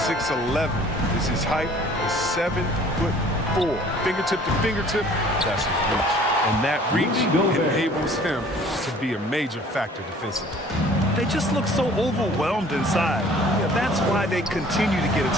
6'11" is his height, is 7'4". Fingertip to fingertip, that's his reach. And that reach enables him to be a major factor defensively. They just look so overwhelmed inside. Yeah, that's why they continue to get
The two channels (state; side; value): normal; both; correlation 0.52